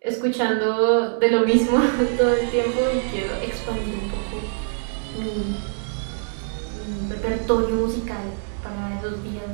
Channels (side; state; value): left; silent; digital silence